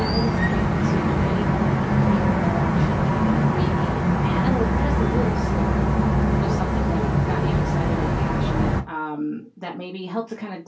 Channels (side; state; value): both; identical; correlation 1.00